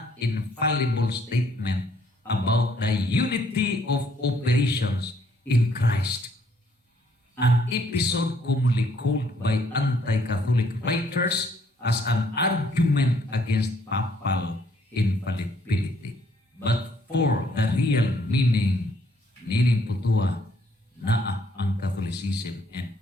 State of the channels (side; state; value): both; normal; correlation 0.66